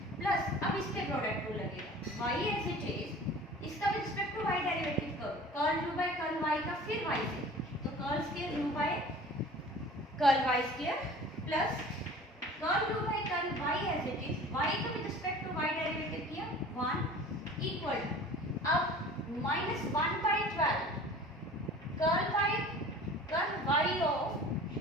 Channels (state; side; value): normal; both; correlation 0.43